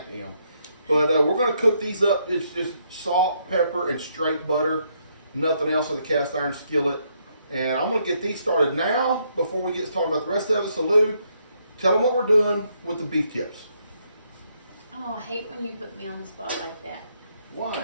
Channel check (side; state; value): both; inverted; correlation -0.74